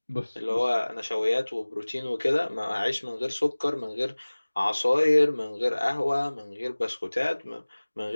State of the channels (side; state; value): both; inverted; correlation -1.00